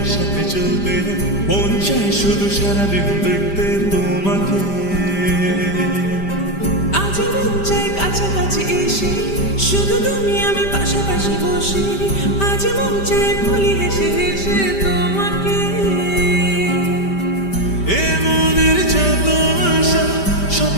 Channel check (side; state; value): right; late; 5.1 ms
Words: চলতে, মন চায় শুধু সারাদিন দেখতে তোমাকে। আজ মন চায় কাছাকাছি এসে শুধু তুমি আমি পাশাপাশি বসে, আজ মন চায় বলি হেসে হেসে তোমাকে। এ মনের যত আশা,